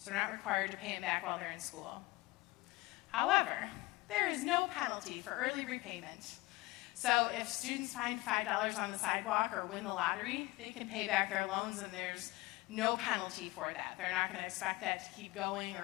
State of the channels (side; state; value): right; quieter; 21.1 dB